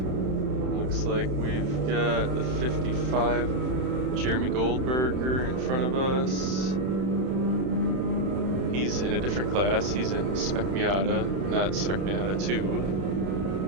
Looks like we've got the 55 Jeremy Goldberger in front of us. He's in a different class. He's in Spec Miata, not Spec Miata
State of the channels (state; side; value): late; left; 31 ms